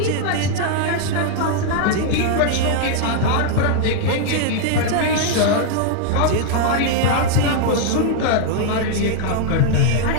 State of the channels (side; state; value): both; different; correlation -0.01